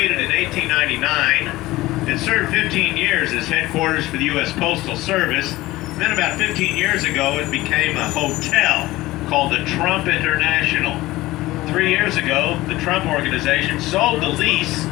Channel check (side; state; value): right; quieter; 18.1 dB